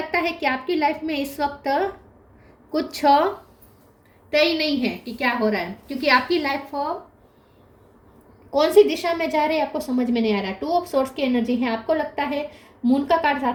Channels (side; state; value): both; identical; correlation 1.00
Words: है कि आपकी लाइफ में इस वक्त कुछ तय नहीं है कि क्या हो रहा है, क्योंकि आपकी लाइफ कौन सी दिशा में जा रही है आपको समझ में नहीं आ रहा है। 2 ऑफ सोर्स की एनर्जी है। आपको लगता है मून का कार्ड